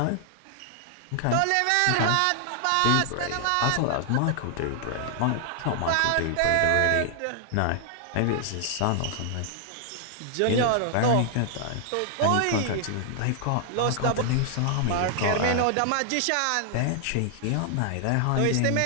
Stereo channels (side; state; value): both; different; correlation 0.00